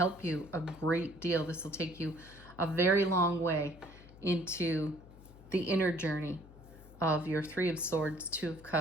you a great deal. This will take you a very long way into the inner journey of your 3 of Swords, 2 of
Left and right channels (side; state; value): left; noise; hum, 20 dB below the sound